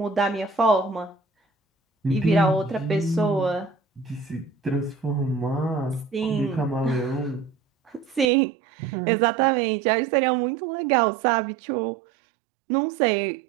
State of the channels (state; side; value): drops out; left; at 8.2 s